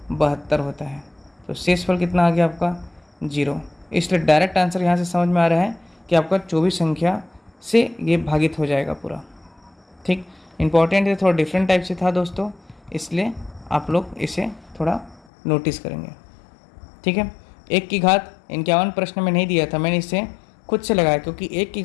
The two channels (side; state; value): right; drops out; at 15.2 s